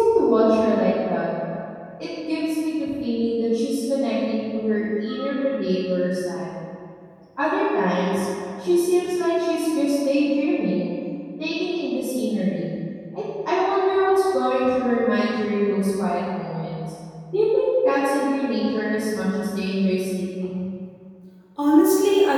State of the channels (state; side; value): identical; both; correlation 1.00